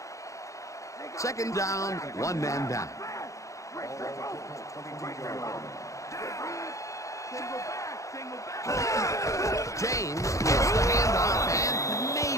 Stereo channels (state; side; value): late; right; 0.15 ms